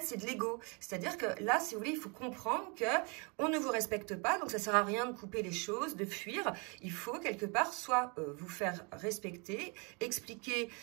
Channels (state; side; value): quieter; left; 32.2 dB